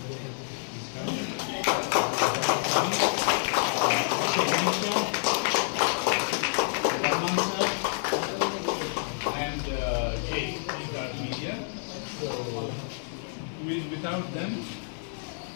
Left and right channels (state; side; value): silent; right; 59 dB below the other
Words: come. And Jay, Start Media. So, without them,